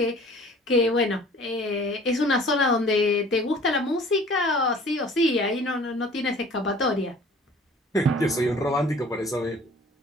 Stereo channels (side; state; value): both; normal; correlation 0.49